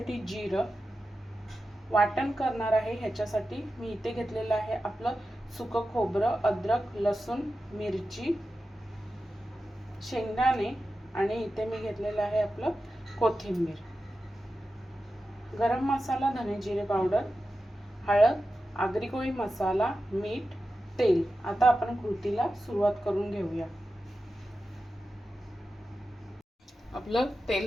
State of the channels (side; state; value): both; normal; correlation 0.92